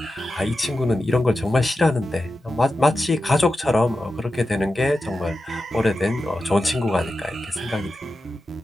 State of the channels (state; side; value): normal; both; correlation 0.92